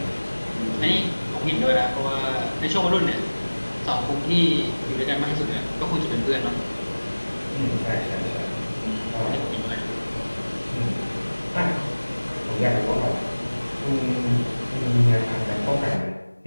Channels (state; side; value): inverted; both; correlation -1.00